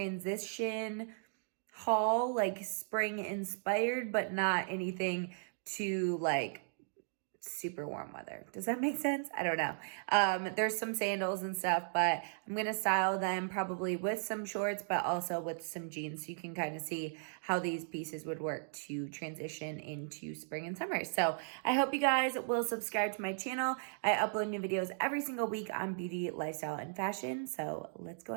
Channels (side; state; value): left; silent; digital silence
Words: haul, like spring inspired, but not anything too like super warm weather. Does that make sense? I don't know. There's some sandals and stuff, but I'm going to style them probably with some shorts, but also with some jeans. So you can kind of see how these pieces would work to transition into spring and summer. So I hope you guys will subscribe to my channel. I upload new videos every single week on beauty, lifestyle, and fashion. So let's go